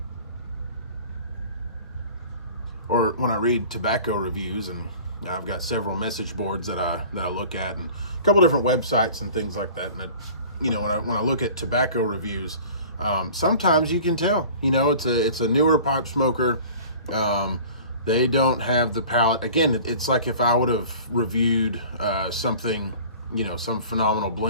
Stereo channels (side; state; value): both; inverted; correlation -0.43